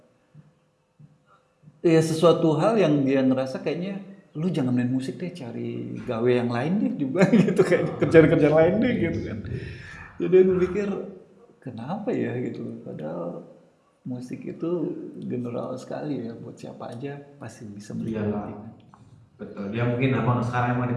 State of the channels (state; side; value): identical; both; correlation 1.00